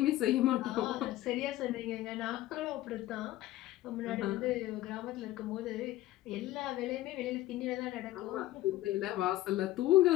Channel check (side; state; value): right; quieter; 15.4 dB